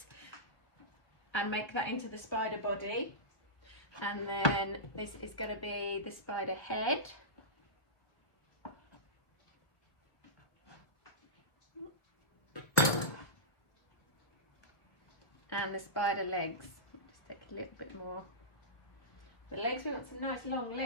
and make that into the spider body. And then this is going to be the spider head. And the spider legs. Just take a little bit more. The legs, we want some nice long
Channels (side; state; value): right; late; 1.5 ms